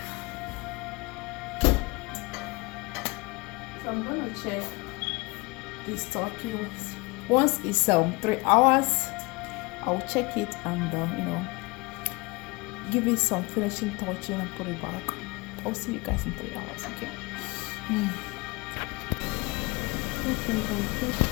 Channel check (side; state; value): right; quieter; 25.6 dB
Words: So I'm going to check this turkey. Once it's 3 hours, I'll check it and you know, give it some finishing touching and put it back. I'll see you guys in 3 hours, okay?